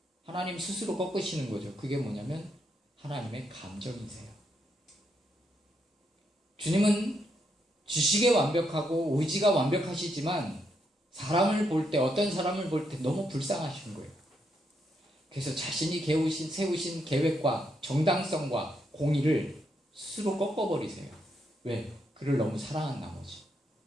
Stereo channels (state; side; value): normal; both; correlation 0.78